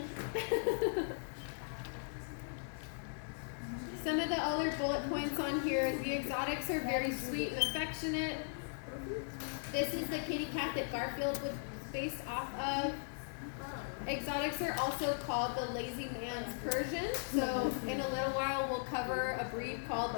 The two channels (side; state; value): right; silent; digital silence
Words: Some of the other bullet points on here is the exotics are very sweet and affectionate. This is the kitty cat that Garfield was based off of. Exotics are also called the lazy man's Persian. So in a little while we'll cover a breed called